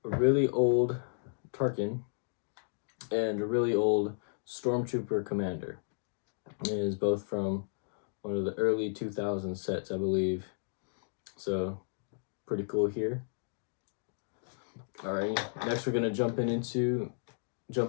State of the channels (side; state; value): right; silent; digital silence